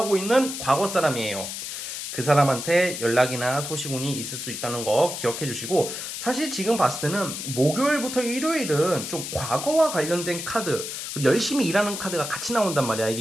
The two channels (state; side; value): noise; left; hiss, 6 dB below the sound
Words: 있는 과거 사람이에요. 그 사람한테 연락이나 소식운이 있을 수 있다는 거 기억해 주시고, 사실 지금 봤을 때는 목요일부터 일요일은 좀 과거와 관련된 카드, 그리고 열심히 일하는 카드가 같이 나온단 말이야.